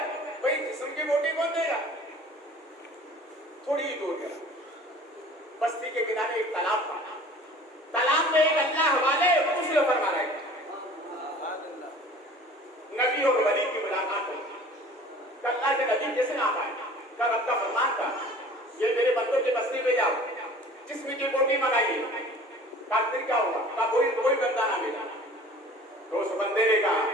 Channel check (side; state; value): both; normal; correlation 0.46